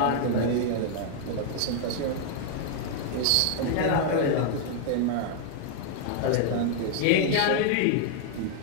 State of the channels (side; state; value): both; different; correlation -0.01